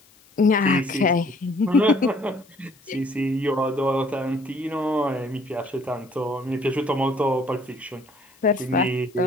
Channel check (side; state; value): left; noise; hiss, 29 dB below the sound